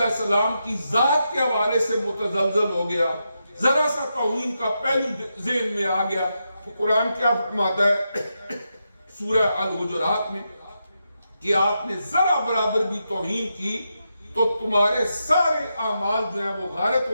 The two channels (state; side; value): inverted; both; correlation -0.85